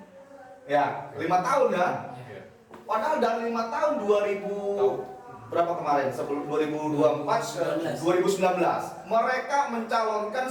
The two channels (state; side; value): identical; both; correlation 1.00